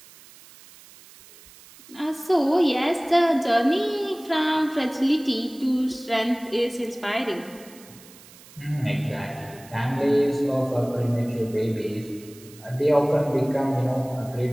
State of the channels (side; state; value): right; noise; hiss, 22 dB below the sound